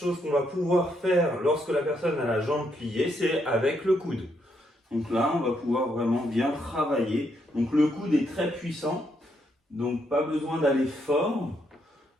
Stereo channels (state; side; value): normal; both; correlation 0.76